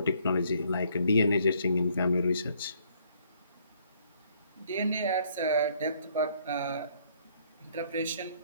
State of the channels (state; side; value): inverted; both; correlation -0.65